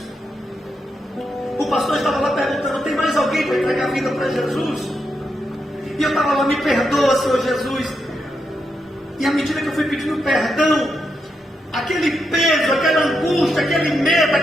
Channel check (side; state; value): both; normal; correlation 0.83